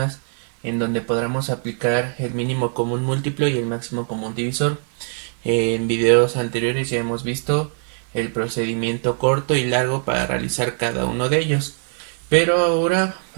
en donde podamos aplicar el mínimo común múltiplo y el máximo común divisor. En videos anteriores ya hemos visto el procedimiento corto y largo para realizar cada uno de ellos, pero ahora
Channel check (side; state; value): left; silent; 58 dB below the other